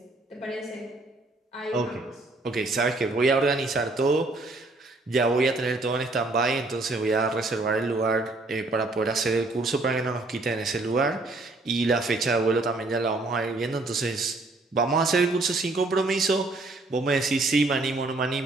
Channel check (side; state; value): left; quieter; 3.1 dB